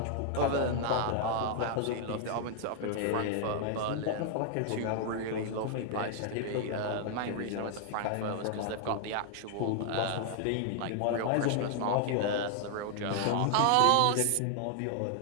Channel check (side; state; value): both; different; correlation 0.00